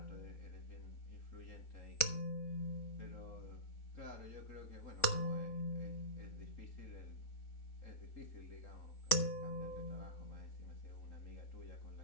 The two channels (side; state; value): right; late; 3.7 ms